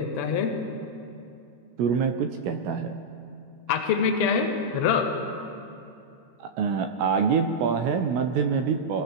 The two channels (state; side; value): late; left; 16 ms